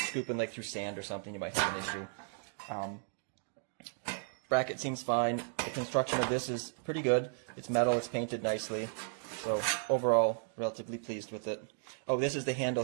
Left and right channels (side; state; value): left; silent; digital silence